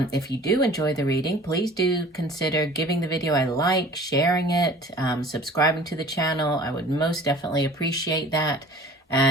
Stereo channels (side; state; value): both; normal; correlation 0.47